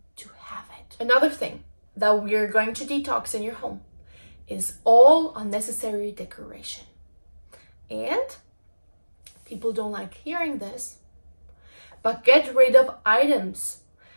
to have it. Another thing that we're going to detox in your home is all unnecessary decoration. And people don't like hearing this, but get rid of items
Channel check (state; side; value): inverted; both; correlation -1.00